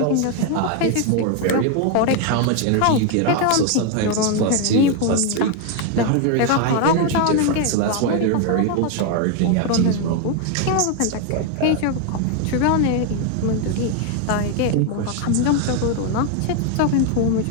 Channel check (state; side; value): different; both; correlation 0.01